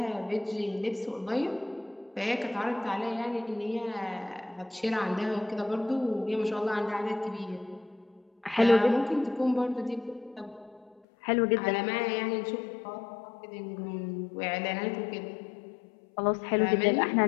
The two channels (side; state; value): right; drops out; at 11.0 s